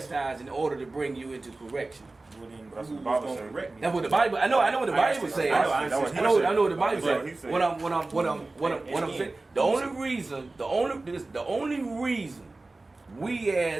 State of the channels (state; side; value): quieter; left; 3.2 dB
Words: in order to bring you into correction. Well, then That's who what the was Bible going to say. correct me? That's what the Bible. I know what the Bible says. I know what he I know said. what the Bible That's what he says. said. What I'm saying. The only reason we